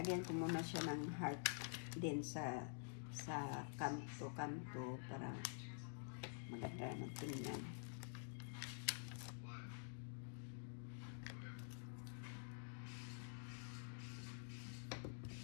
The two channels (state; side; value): silent; right; digital silence